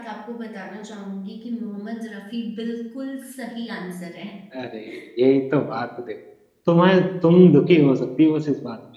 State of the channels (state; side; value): identical; both; correlation 1.00